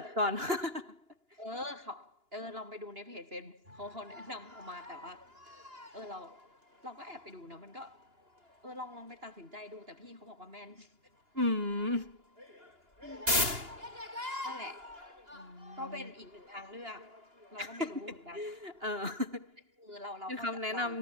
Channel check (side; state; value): left; late; 2.9 ms